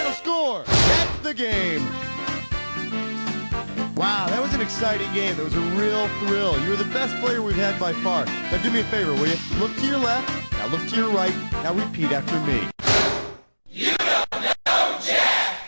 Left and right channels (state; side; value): inverted; both; correlation -1.00